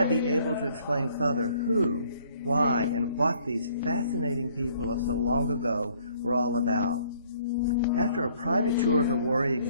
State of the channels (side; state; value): both; inverted; correlation -0.61